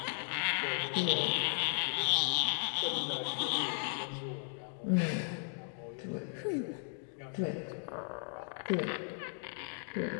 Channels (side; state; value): right; silent; 54 dB below the other